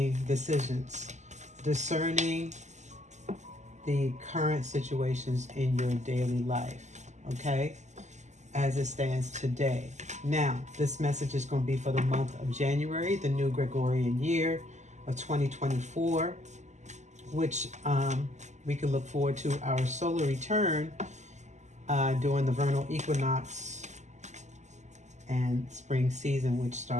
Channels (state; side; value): late; left; 0.34 ms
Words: decisions, discerning the current situations in your daily life. Okay, as it stands today. Now, this message is going to be for the month of January, the new Gregorian year of 2024, which we can look forward to our solar return during the vernal equinox and spring season, which